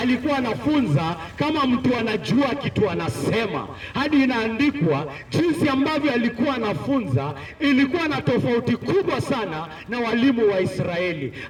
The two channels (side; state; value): both; identical; correlation 1.00